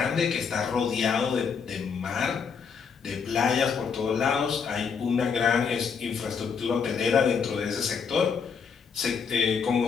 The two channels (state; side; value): quieter; right; 6.2 dB